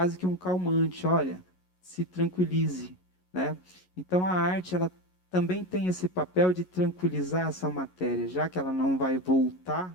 que um calmante, olha, se tranquilize, né? Então a arte, ela também tem esse papel de tranquilizar essa matéria, já que ela não vai voltar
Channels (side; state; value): right; late; 11 ms